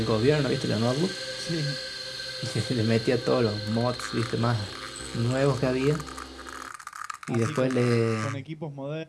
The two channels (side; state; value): both; identical; correlation 1.00